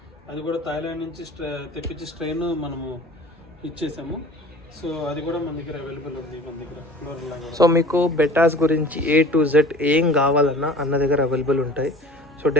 అది కూడా థాయిలాండ్ నుంచి తెప్పించి స్ట్రెయిన్ మనము ఇచ్చేసాము. సో అది కూడా మన దగ్గర అవైలబుల్ ఉంది మన దగ్గర క్లోరిల్లా. సో మీకు బెటాస్ గురించి A to Z ఏం కావాలన్నా అన్న దగ్గర అవైలబుల్ ఉంటాయి. సో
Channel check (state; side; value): normal; both; correlation 0.43